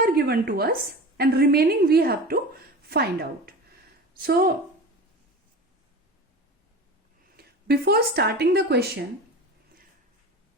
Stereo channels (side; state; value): both; normal; correlation 0.33